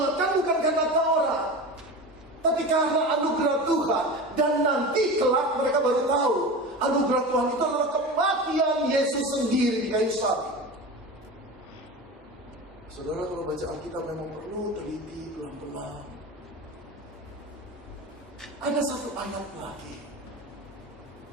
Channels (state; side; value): normal; both; correlation 0.29